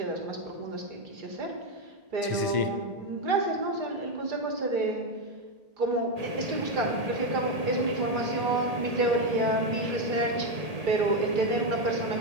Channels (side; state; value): left; late; 1.8 ms